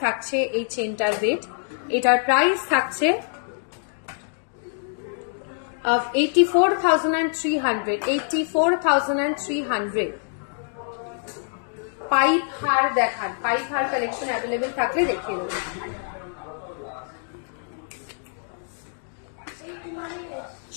থাকছে এই চেনটার ওয়েট। এটার প্রাইস থাকছে 84,300। 84,300। পাইপ হার দেখান, পাইপ হার কালেকশন অ্যাভেলেবেল থাকলে দেখিয়ে দেবো।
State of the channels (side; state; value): right; silent; digital silence